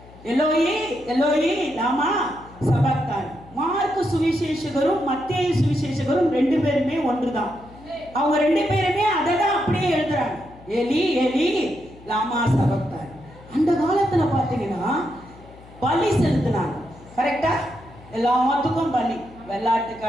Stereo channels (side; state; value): left; noise; hum, 22 dB below the sound